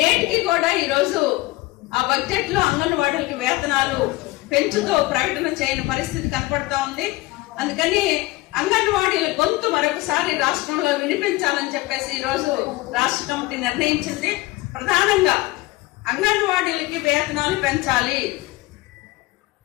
కూడా ఈరోజు ఆ బడ్జెట్ లో అంగన్వాడీలకి వేతనాలు పెంచుతూ ప్రకటన చేయని పరిస్థితి కనపడతా ఉంది. అందుకని అంగన్వాడీల గొంతు మరొకసారి రాష్ట్రంలో వినిపించాలని చెప్పేసి ఈరోజు రాష్ట్ర కమిటీ నిర్ణయించింది. ప్రధానంగా అంగన్వాడీలకి వేతనాలు పెంచాలి.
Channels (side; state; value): right; quieter; 20.3 dB